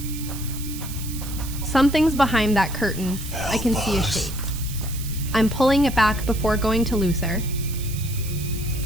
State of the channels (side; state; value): right; noise; hiss, 12 dB below the sound